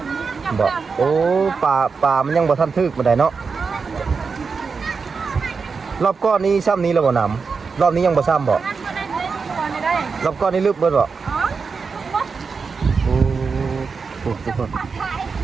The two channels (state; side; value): quieter; left; 5.1 dB